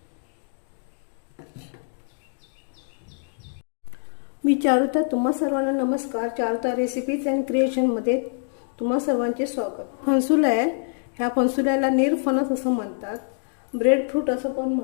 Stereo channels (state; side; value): silent; right; digital silence